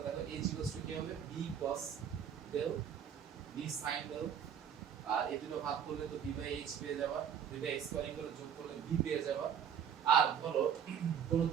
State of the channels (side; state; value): left; quieter; 8.3 dB